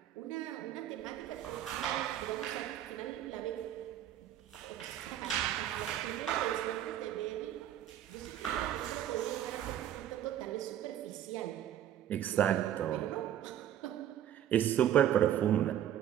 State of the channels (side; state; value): left; quieter; 11.2 dB